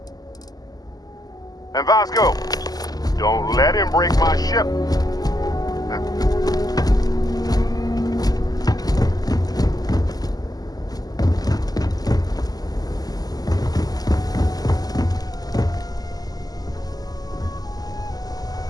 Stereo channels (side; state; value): right; late; 0.18 ms